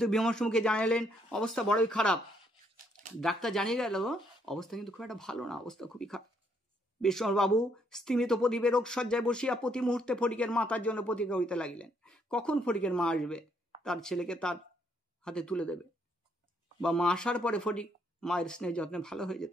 বিমর্ষ মুখে জানালেন, অবস্থা বড়ই খারাপ। ডাক্তার জানিয়ে গেল অবস্থা কিন্তু খুব একটা ভালো না, অবস্থা খুবই খারাপ। বিশ্বম্বরবাবু স্তিমিত প্রদীপে রোগ সজ্জায় বসিয়া প্রতি মুহূর্তে ফটিকের মাতার জন্য প্রতীক্ষা করিতে লাগিলেন। কখন ফটিকের মা আসবে, তার ছেলেকে তার হাতে তুলে দেবে, বা মা আসার পরে ফটিক মায়ের স্নেহ যত্নে ভালো হয়ে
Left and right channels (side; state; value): both; normal; correlation 0.71